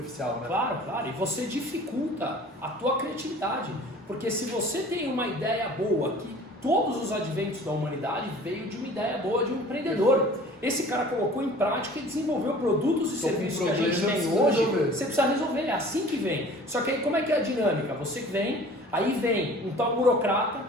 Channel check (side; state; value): both; normal; correlation 0.46